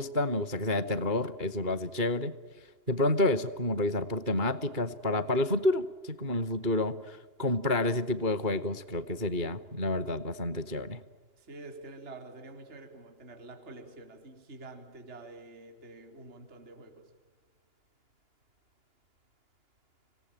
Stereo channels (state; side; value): late; left; 2.9 ms